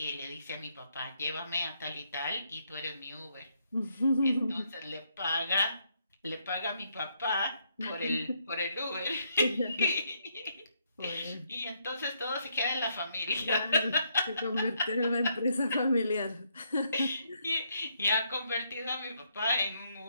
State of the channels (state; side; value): inverted; both; correlation -0.74